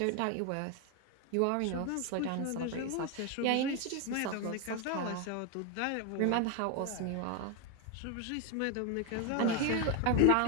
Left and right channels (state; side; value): different; both; correlation 0.01